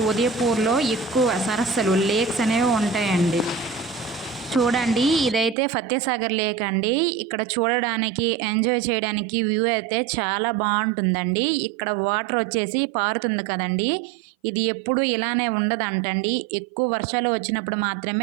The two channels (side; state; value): left; drops out; at 5.6 s